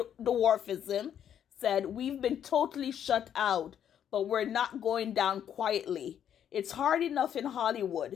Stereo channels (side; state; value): right; quieter; 9.4 dB